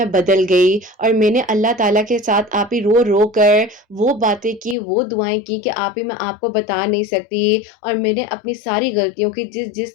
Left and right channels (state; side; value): drops out; right; at 4.8 s